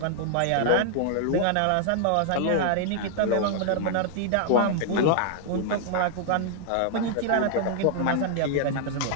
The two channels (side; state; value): both; different; correlation -0.01